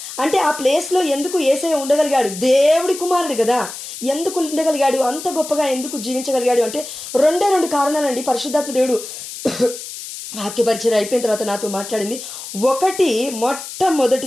అంటే ఆ ప్లేస్లో ఎందుకు యేసయ్య ఉండగలిగాడు? దేవుడి కుమారుడు కదా, ఎందుకు ఉండగలిగాడు? అంత గొప్పగా ఎందుకు జీవించగలిగాడు అంటే రెండు కారణాలండి. పరిశుద్ధాత్మ దేవుడు వాక్యపరిచయం అయిపోయిన తర్వాత నాతో మాట్లాడింది. ఒకటి,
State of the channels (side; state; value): left; noise; hiss, 10 dB below the sound